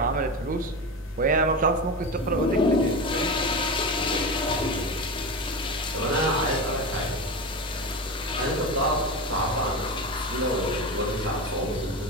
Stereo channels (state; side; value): normal; both; correlation 0.23